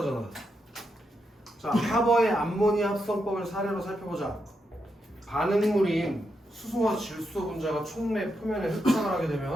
자, 하버의 암모니아 합성법을 사례로 살펴보자. 반응물인 수소와 질소 분자가 촉매 표면에 흡착을 하게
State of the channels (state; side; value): normal; both; correlation 0.83